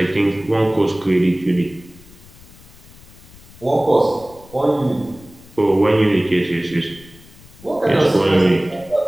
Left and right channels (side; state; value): left; noise; rumble, 22 dB below the sound